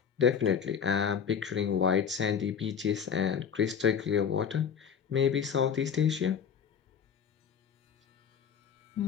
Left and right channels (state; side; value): quieter; right; 7.3 dB